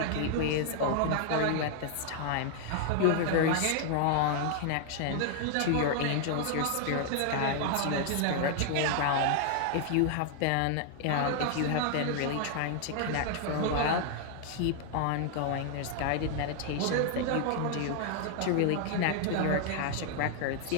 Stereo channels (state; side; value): different; both; correlation 0.00